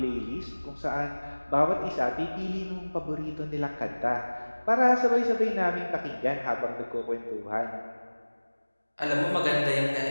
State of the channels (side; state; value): both; inverted; correlation -1.00